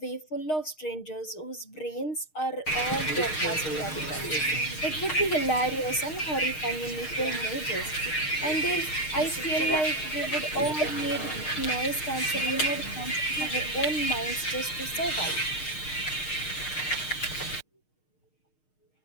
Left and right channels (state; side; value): late; right; 6.5 ms